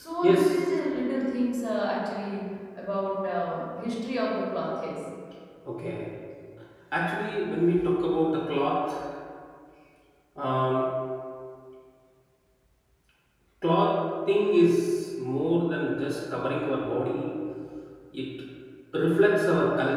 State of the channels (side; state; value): both; identical; correlation 1.00